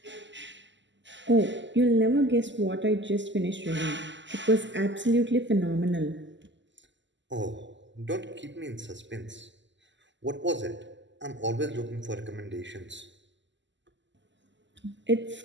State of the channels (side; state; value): left; late; 0.54 ms